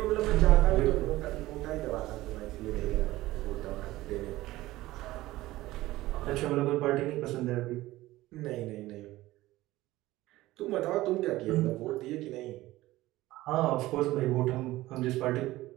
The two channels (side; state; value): left; quieter; 17.3 dB